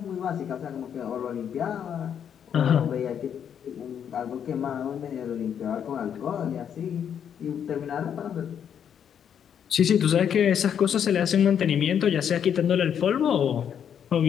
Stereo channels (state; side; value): quieter; right; 8.5 dB